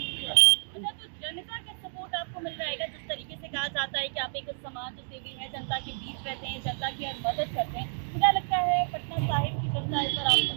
का। तो जनता का सपोर्ट आपको मिल रहेगा। जिस तरीके से कहा जाता है कि आप एक समाज सेवी हैं, जनता के बीच रहते हैं, जनता की हर मदद करते हैं, क्या लगता है पटना साहिब की जनता इस पर आपको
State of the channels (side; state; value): left; silent; digital silence